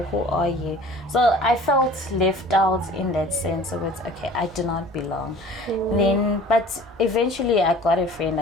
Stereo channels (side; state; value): both; normal; correlation 0.46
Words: who are you? So I felt left out in that sense of it's okay, I do not belong. Then, but eventually I got a friend,